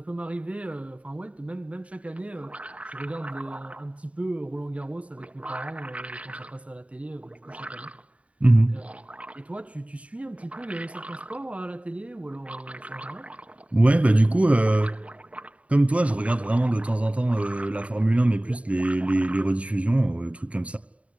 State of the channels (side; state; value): left; late; 0.065 ms